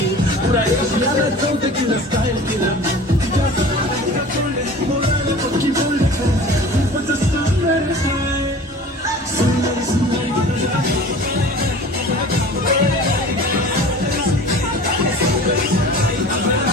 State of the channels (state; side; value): normal; both; correlation 0.41